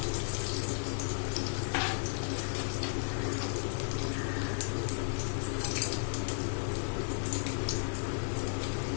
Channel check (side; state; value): right; silent; digital silence